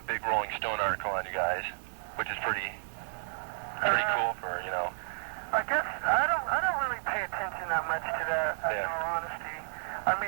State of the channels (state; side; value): silent; left; 57 dB below the other